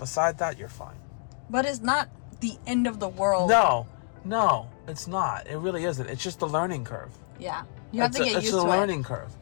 that, you're fine. But it's not the end of the world. No, it's not. It really isn't. It's just the learning curve. Yeah. You have to get used to it. It's a learning curve.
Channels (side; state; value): right; silent; digital silence